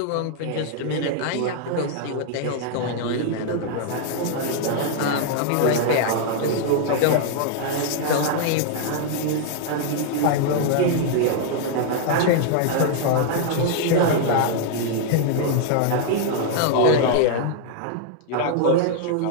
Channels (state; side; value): different; both; correlation -0.01